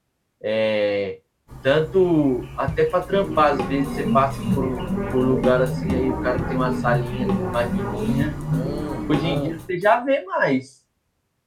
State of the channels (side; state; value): both; identical; correlation 1.00